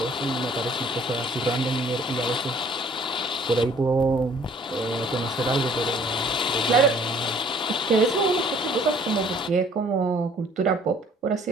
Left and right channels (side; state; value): both; normal; correlation 0.57